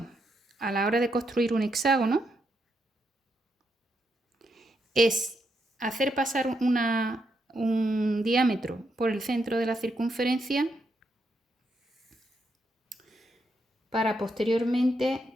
a la hora de construir un hexágono es hacer pasar un diámetro por el centro de la circunferencia para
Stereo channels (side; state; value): both; normal; correlation 0.80